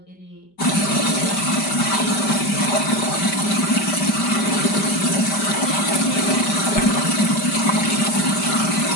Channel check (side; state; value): right; late; 5.1 ms